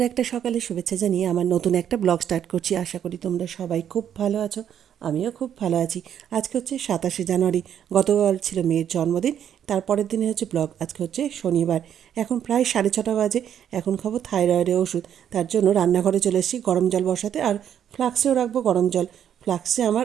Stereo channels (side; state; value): left; quieter; 9.4 dB